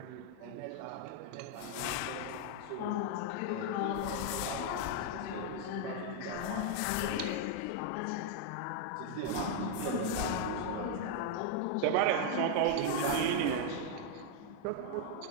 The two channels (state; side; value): different; both; correlation 0.00